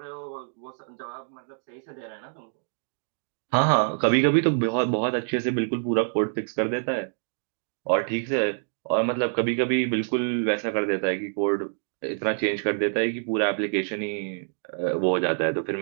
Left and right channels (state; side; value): silent; left; digital silence